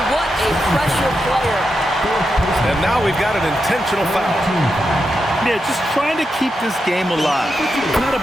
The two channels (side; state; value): both; normal; correlation 0.86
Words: What a pressure player. And now we've got an intentional foul. Yeah, just trying to keep this game alive. Not a